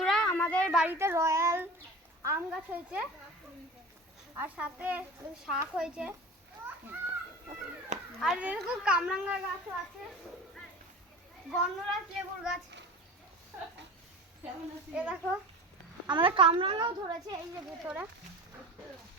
আমাদের বাড়িতে রয়্যাল আম গাছ হয়েছে, আর সাথে শাক হয়েছে। আর এরকম কামরাঙ্গা গাছও আছে, গন্ধরাজ লেবুর গাছ। এ দেখো আমাদের কামরাঙ্গাও ধরেছে, এই যে ভেতরে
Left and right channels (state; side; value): normal; both; correlation 0.35